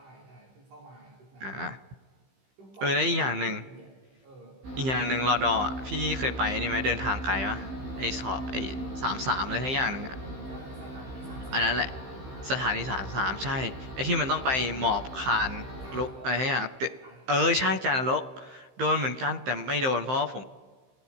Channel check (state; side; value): late; left; 15 ms